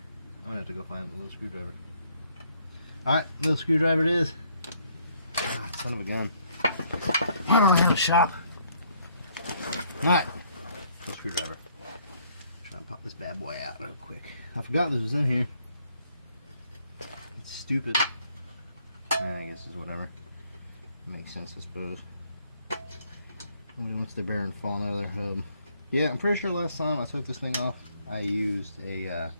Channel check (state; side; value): inverted; both; correlation -0.67